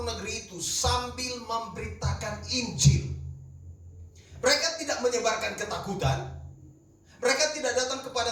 negeri itu sambil memberitakan Injil. Mereka tidak menyebarkan ketakutan. Mereka tidak datang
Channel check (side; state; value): both; identical; correlation 1.00